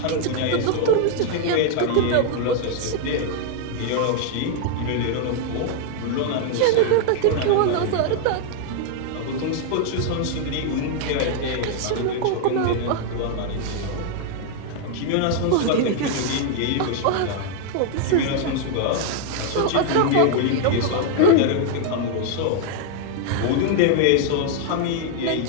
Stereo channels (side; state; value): both; different; correlation 0.00